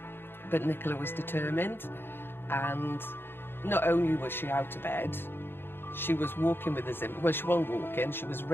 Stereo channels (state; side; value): late; right; 0.10 ms